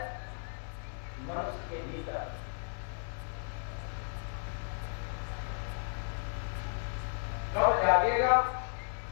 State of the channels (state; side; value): silent; right; digital silence